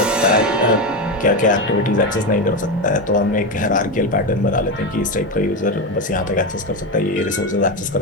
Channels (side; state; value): both; normal; correlation 0.15